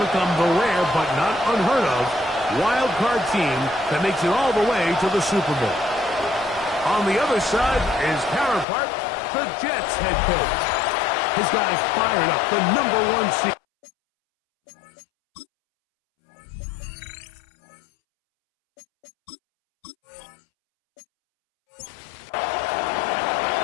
become the rare but not unheard of wild card team that makes it all the way to the Super Bowl. On the other side, his counterpart, the Jets head coach. His guys fired up the #1 seed.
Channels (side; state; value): right; drops out; at 8.7 s